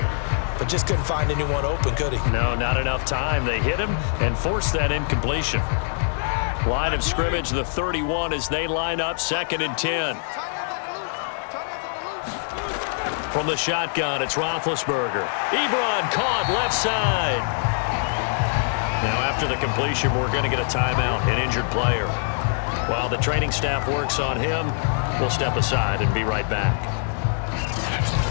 but just couldn't find anyone open, could he? No, not enough time. They hit him and forced that incompletion. Line of scrimmage, the 31 as they line up 2nd and 10. From the shotgun, it's Roethlisberger. Ebron caught left side. Now after the completion, we're going to get a timeout, an injured player. While the training staff works on him, we'll step aside and be right back.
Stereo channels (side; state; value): right; silent; 58 dB below the other